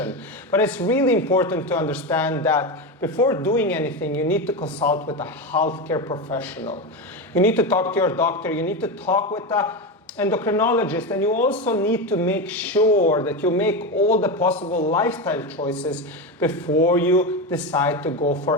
But it's really important to understand that before doing anything, you need to consult with a healthcare professional. You need to talk to your doctor, you need to talk with the endocrinologist, and you also need to make sure that you make all the possible lifestyle choices before you decide to go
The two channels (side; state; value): both; normal; correlation 0.17